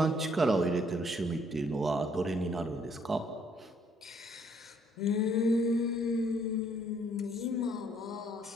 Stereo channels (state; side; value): normal; both; correlation 0.66